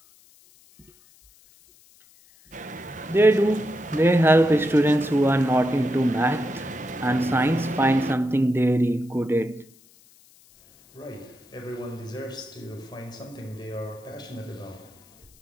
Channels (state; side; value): noise; left; hiss, 28 dB below the sound